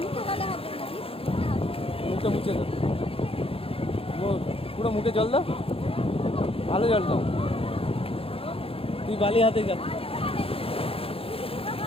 মুখে মুছে দাও, পুরো মুখে জল দাও, ভালো জল দাও। তুই বালি হাতে যা।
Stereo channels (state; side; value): late; right; 0.27 ms